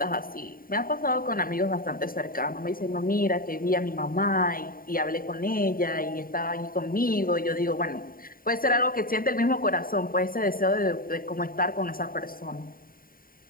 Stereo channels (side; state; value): right; late; 0.41 ms